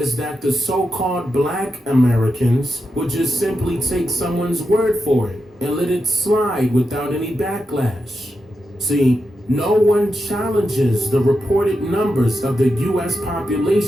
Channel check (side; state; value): both; normal; correlation 0.87